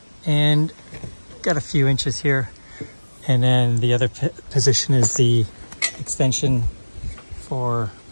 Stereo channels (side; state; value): both; inverted; correlation -1.00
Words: and got a few inches here, And then the other position is the extension for